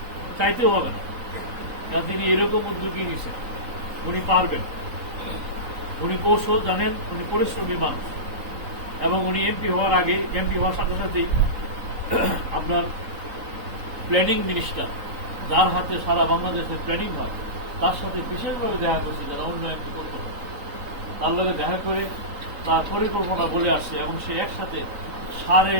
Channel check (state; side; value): late; left; 3.9 ms